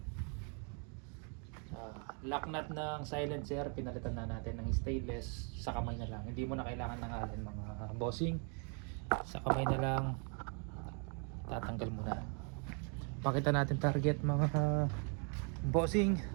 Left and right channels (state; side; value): quieter; left; 38.5 dB